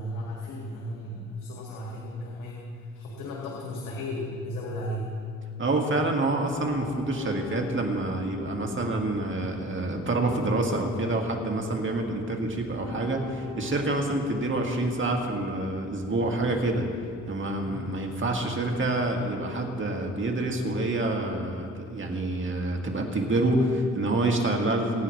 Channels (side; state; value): both; normal; correlation 0.45